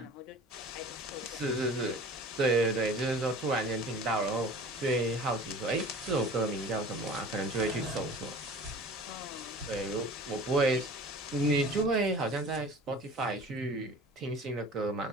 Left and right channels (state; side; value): normal; both; correlation 0.42